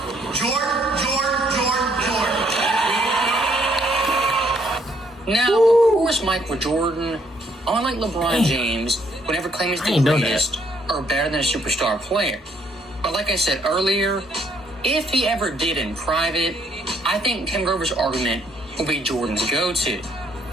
Jordan. Now, of course, Michael Jordan, unlike LeBron James, would never claim he's the greatest or better than a superstar player. But like I said earlier, if he ever did in private, I think Tim Grover's argument will be Jordan's go-to.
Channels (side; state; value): both; normal; correlation 0.69